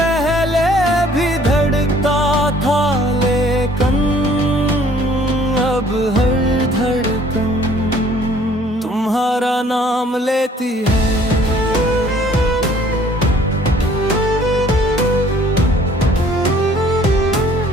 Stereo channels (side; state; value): both; normal; correlation 0.57